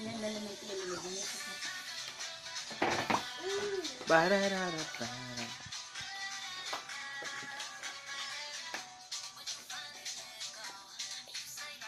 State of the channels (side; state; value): both; identical; correlation 1.00